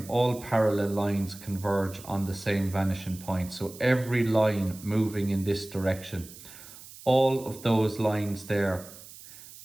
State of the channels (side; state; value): right; noise; hiss, 17 dB below the sound